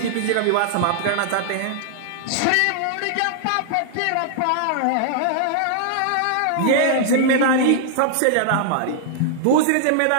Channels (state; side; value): different; both; correlation -0.01